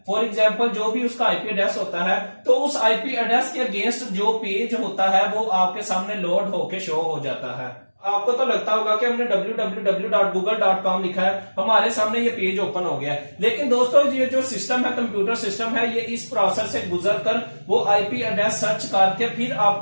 फॉर एग्जाम्पल जो भी उसका IP एड्रेस होता है, तो उस IP एड्रेस के अगेंस्ट जो पेज होता है वो आपके सामने लोड होके शो हो जाता है। आपको तो लगता होगा कि हमने www.google.com लिखा है, हमारे सामने ये पेज ओपन हो गया है। लेकिन दोस्तों ये जो सिस्टम है, कंप्यूटर सिस्टम है, ये इस प्रोसेस से गुजर कर वो आईपी एड्रेस सर्च करके फिर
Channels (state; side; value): inverted; both; correlation -1.00